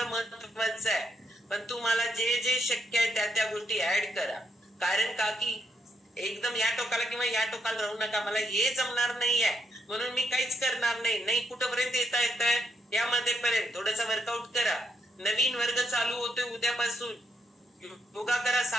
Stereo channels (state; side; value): normal; both; correlation 0.77